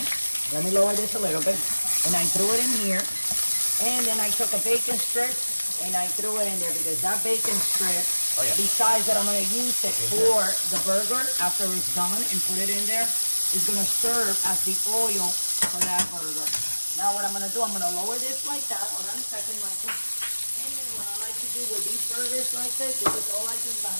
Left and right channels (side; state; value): both; inverted; correlation -1.00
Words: let me lower this a little bit, and I threw it in here, and then I took a bacon strip and I threw it in there because that bacon strip. Besides that, I'm going to use it for the burger after it's done and put it in there. It's going to serve as the oil for that burger. Now what I'm going to do, I'm going to lower this like that. Hold on a second, Michael. And then what I like to do with these burgers like this is all I do,